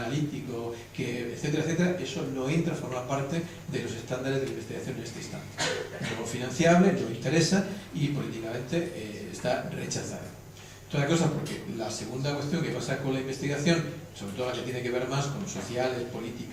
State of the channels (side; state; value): both; identical; correlation 1.00